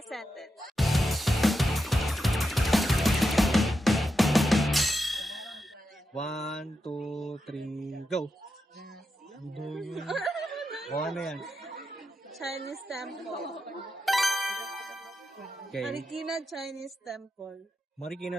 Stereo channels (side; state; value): both; normal; correlation 0.87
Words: Sentence. One, two, three, go! O ano yan? Chinese Temple. Okay. Marikina Chinese Temple.